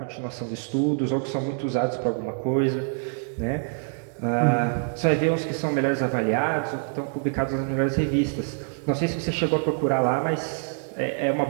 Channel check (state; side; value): silent; left; 60 dB below the other